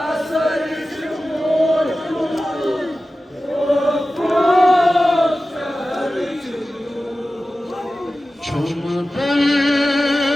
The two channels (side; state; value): both; normal; correlation 0.95